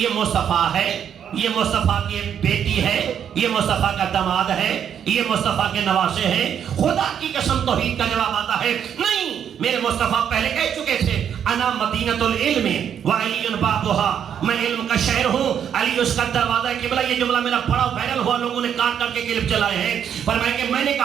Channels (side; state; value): left; quieter; 8.6 dB